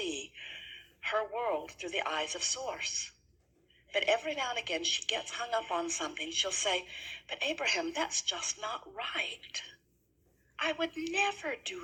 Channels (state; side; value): identical; both; correlation 1.00